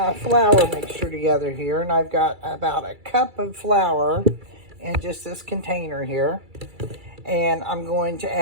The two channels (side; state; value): left; late; 2.3 ms